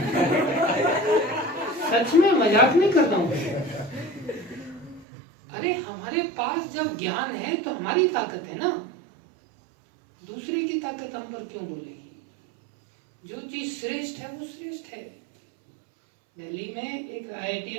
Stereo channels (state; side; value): drops out; left; at 5.1 s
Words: सच में मजाक नहीं कर रहा हूँ। अरे हमारे पास जब ज्ञान है तो हमारी ताकत है ना, दूसरे की ताकत हम पर क्यों बोलेगी? जो चीज श्रेष्ठ है वो श्रेष्ठ है। दिल्ली में एक